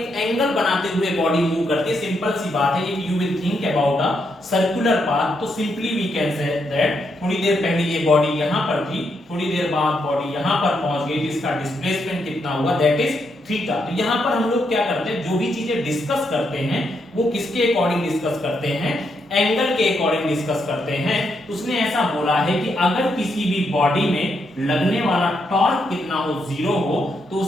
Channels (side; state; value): both; normal; correlation 0.79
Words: एंगल बनाते हुए बॉडी मूव करती है। सिंपल सी बात है, if you will think about a circular path, तो simply we can say that थोड़ी देर पहले ये बॉडी यहां पर थी, थोड़ी देर बाद बॉडी यहां पर पहुंच गई, जिसका डिस्प्लेसमेंट कितना हुआ, दैट इज थीटा। तो यहां पर हम लोग क्या करते हैं, जो भी चीजें डिस्कस करते हैं वो किसके अकॉर्डिंग डिस्कस करते हैं, एंगल के अकॉर्डिंग डिस्कस करते हैं। उसने ऐसा बोला है कि अगर किसी भी बॉडी में लगने वाला टॉर्क कितना हो, 0 हो, तो